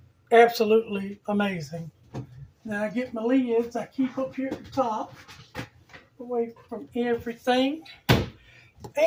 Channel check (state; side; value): identical; both; correlation 1.00